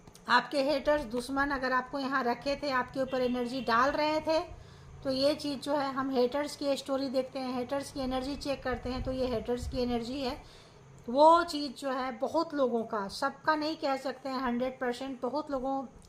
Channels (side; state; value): both; identical; correlation 1.00